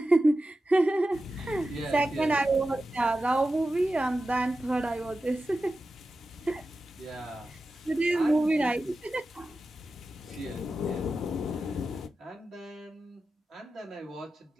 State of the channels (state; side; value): normal; both; correlation 0.93